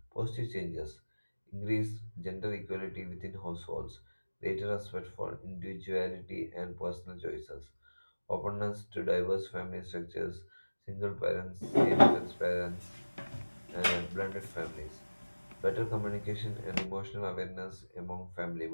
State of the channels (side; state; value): both; inverted; correlation -1.00